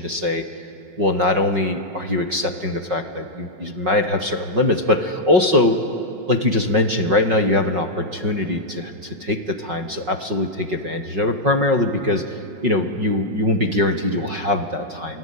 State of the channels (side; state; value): left; late; 5.4 ms